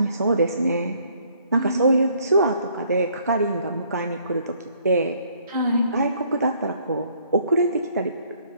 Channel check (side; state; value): both; inverted; correlation -0.64